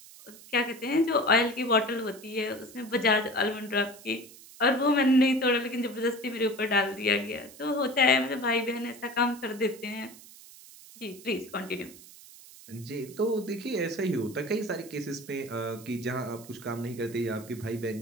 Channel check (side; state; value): right; noise; hiss, 19 dB below the sound